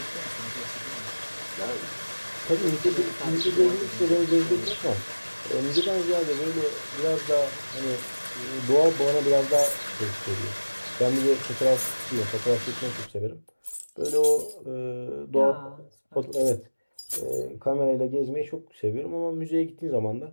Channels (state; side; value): inverted; both; correlation -1.00